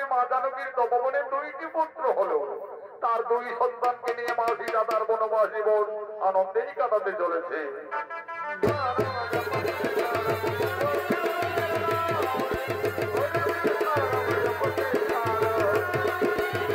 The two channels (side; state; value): both; identical; correlation 1.00